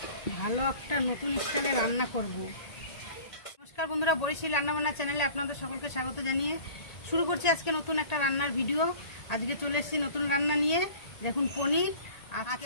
ভালো একটা নতুন স্টাইলে রান্না করব। নমস্কার বন্ধুরা, বরিশাল রান্নাবান্না চ্যানেলে আপনাদের সকলকে স্বাগত জানিয়ে শুরু করছি আজকে নতুন একটা রান্নার ভিডিও। আজকে চলে এসেছি নতুন রান্না নিয়ে। দেখুন পনির,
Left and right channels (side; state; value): right; late; 1.8 ms